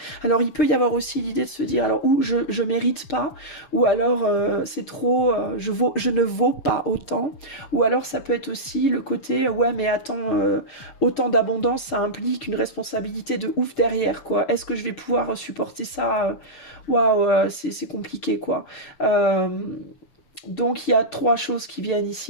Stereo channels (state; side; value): late; right; 6.9 ms